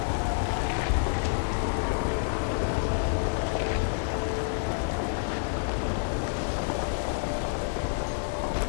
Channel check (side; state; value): right; silent; digital silence